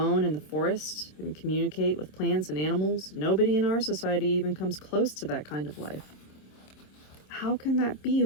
in the forest and communicate with plants and animals. Nobody in our society even comes close to that kind of life. How can that be,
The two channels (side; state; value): right; late; 26 ms